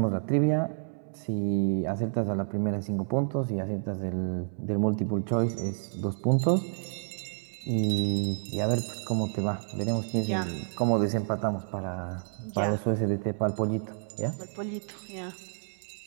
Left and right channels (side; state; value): left; silent; 58 dB below the other